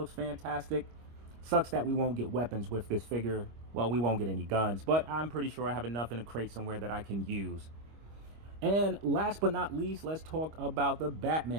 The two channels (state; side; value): late; left; 25 ms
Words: fantastic. Sucks that we won't get weapons with this figure. Well, we won't get any guns, but I'm pretty sure I have enough in a crate somewhere that I can use. And last but not least, let's talk about the